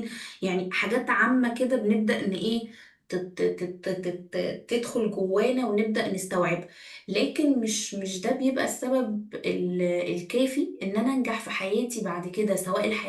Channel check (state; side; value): identical; both; correlation 1.00